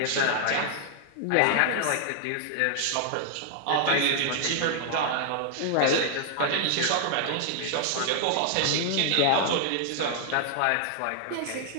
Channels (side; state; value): both; different; correlation -0.01